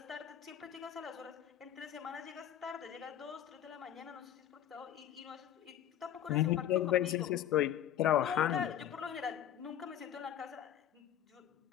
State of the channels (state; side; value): quieter; right; 10.8 dB